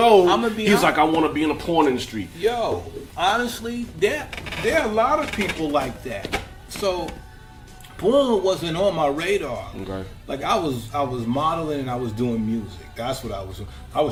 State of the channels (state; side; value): identical; both; correlation 1.00